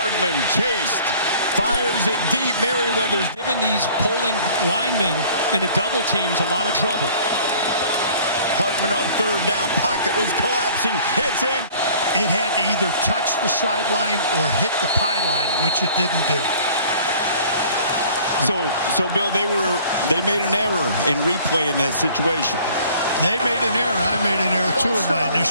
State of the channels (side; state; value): both; inverted; correlation -0.51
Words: chased. Fires it deep. Merriweather's given these polling linemen in the double teams a lot of trouble. Hartman on 3rd down. Pocket was collapsing. Hits in. It had to either touch the sideline or hit the pylon, which it didn't do. So Bill, they made an error in replay in that situation. They made an error. I made an error too in my